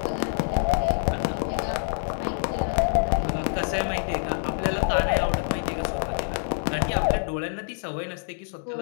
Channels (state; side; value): silent; right; digital silence